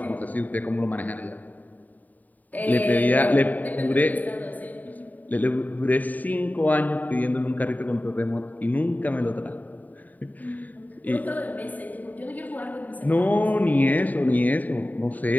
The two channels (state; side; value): late; right; 0.080 ms